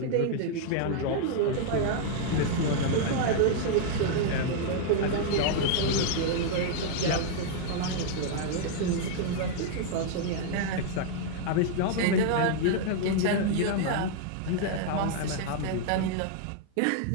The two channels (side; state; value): both; different; correlation -0.01